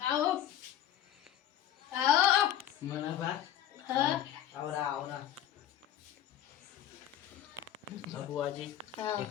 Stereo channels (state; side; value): quieter; right; 11.3 dB